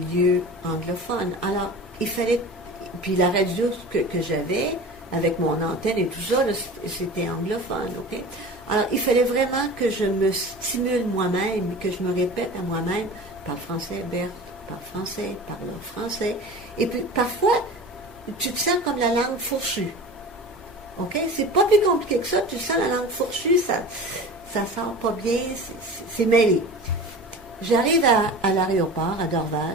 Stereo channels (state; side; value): normal; both; correlation 0.36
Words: anglophone. Alors, il fallait... Puis la radio que j'avais, avec mon antenne et tout ça, là, c'était anglophone, OK? Alors, il fallait vraiment que je me stimule moi-même, que je me répète à moi-même, parle français, Berthe, parle français, parle français. Et puis, parfois, tu te sens comme la langue fourchue. OK? C'est pas plus compliqué que ça. Tu sens la langue fourchue, ça sort pas bien, c'est mêlé. J'arrive à l'aéroport, à